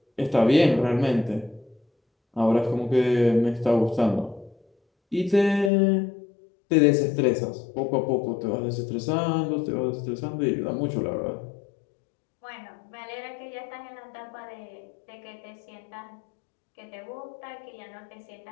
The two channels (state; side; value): drops out; right; at 5.7 s